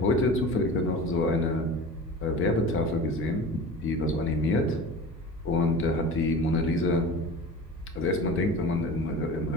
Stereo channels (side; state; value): both; normal; correlation 0.36